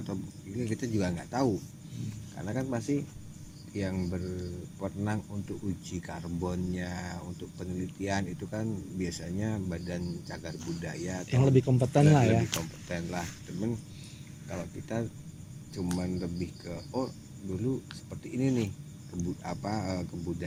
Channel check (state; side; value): identical; both; correlation 1.00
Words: atau ini kita juga nggak tahu, karena kan masih yang berwenang untuk uji karbonnya, untuk penelitian itu kan biasanya Badan Cagar Budaya yang lebih kompeten lah ya. Temen kalau kita cuman lebih ke dulu seperti ini nih,